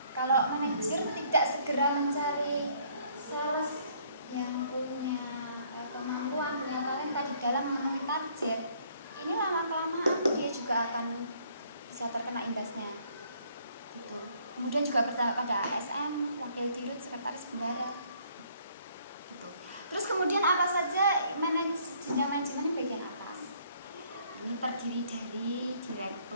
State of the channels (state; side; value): inverted; both; correlation -0.63